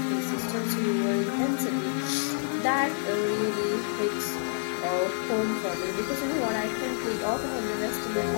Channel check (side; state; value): right; silent; digital silence